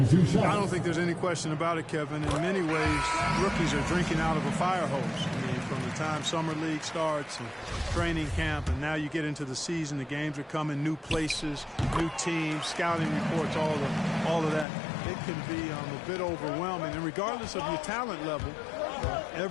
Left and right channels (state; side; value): drops out; right; at 14.7 s